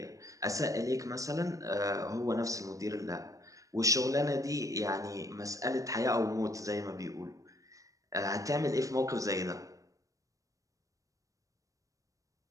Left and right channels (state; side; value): late; left; 0.16 ms